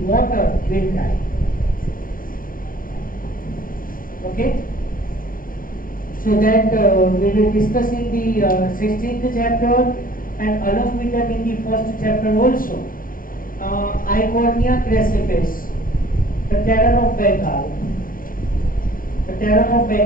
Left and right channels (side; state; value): right; late; 0.41 ms